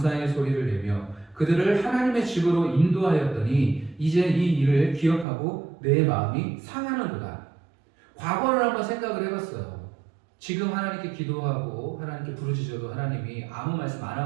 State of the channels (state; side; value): drops out; left; at 5.2 s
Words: 소리를 내며 그들을 하나님의 집으로 인도하였더니 이제 이 일을 기억하고 내 마음이 상하는구나. 과거를 한번 생각을 해봤어요. 지금 하나님께 기도하고 하나님께 부르짖어도 하나님이 아무 말씀 안